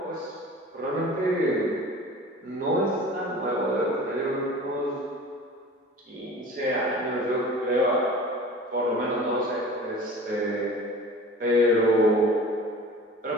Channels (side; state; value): both; normal; correlation 0.40